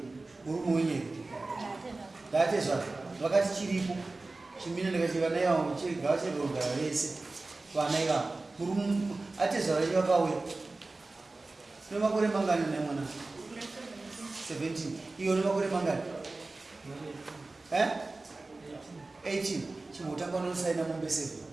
Urumonye. Datezwa. Vakati chiripo. Chimina ndikachiva naye wangu chigawa cheronda vese. Vana iva. Atezwa vachiva kauya. Une makore mangani naye mwana? 17. Iyo une makore mangani? 18. Chimutanga unosaina mombe 7.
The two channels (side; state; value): left; quieter; 3.3 dB